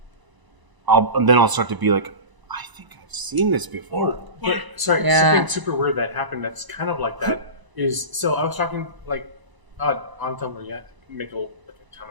I'll start to be like, I think I've seen this before. But sorry, Yeah. something super weird that happened that's kind of like that is, so I was talking like on Tumblr, yeah, make a ton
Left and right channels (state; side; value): late; left; 1.0 ms